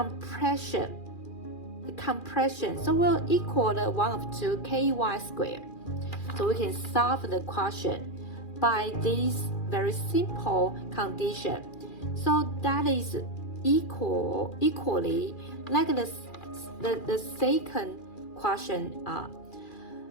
So will equal the 1 over 2 ky squared. So we can solve the question by this very simple condition. So that is equally like the second question.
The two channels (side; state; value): right; late; 2.4 ms